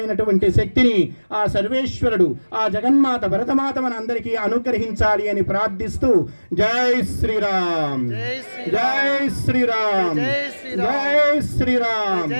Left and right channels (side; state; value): both; inverted; correlation -1.00